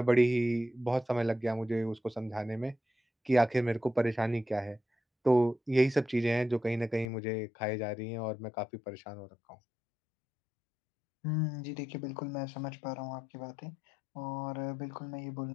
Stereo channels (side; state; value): right; drops out; at 7.1 s